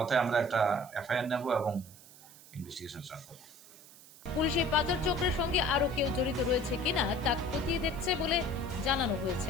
আমরা একটা FIR নেব এবং ইনভেস্টিগেশন স্টার্ট করব। পুলিশ এই পাচার চক্রের সঙ্গে আরো কেউ জড়িত রয়েছে কিনা তা খতিয়ে দেখছে বলে জানানো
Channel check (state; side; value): noise; right; hiss, 21 dB below the sound